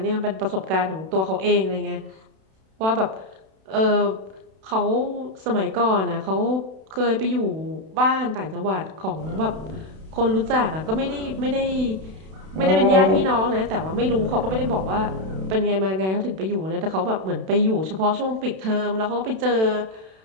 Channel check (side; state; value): left; late; 32 ms